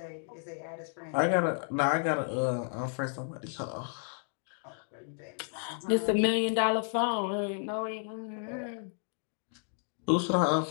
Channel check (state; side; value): silent; right; 56 dB below the other